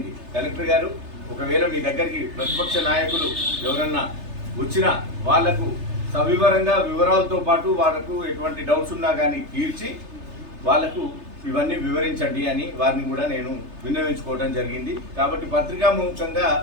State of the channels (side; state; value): left; late; 3.3 ms